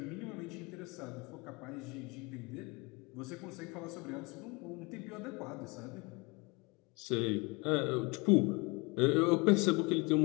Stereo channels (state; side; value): quieter; right; 27.2 dB